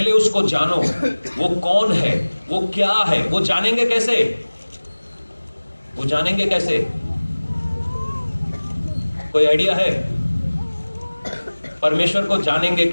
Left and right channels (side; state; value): both; inverted; correlation -1.00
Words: उसको जानो, वो कौन है, वो क्या है। वो जानेंगे कैसे? वो जानेंगे कैसे? कोई आइडिया है? परमेश्वर को जानेंगे